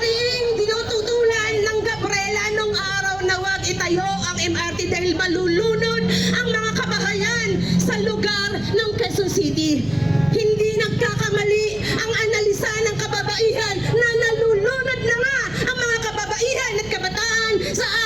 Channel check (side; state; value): right; noise; hum, 18 dB below the sound